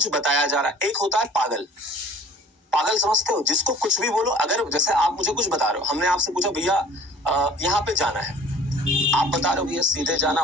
बताया जा रहा है, एक होता है पागल। पागल समझते हो, जिसको कुछ भी बोलो। अगर जैसे आप मुझे कुछ बता रहे हो, हमने आपसे पूछा भैया यहाँ पे जाना है, आप बता रहे हो भैया सीधे जाना,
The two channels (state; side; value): normal; both; correlation 0.48